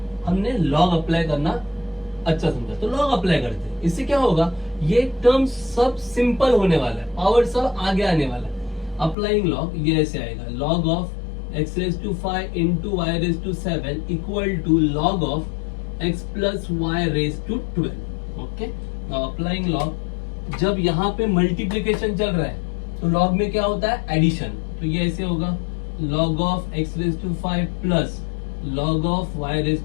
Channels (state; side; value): drops out; right; at 9.2 s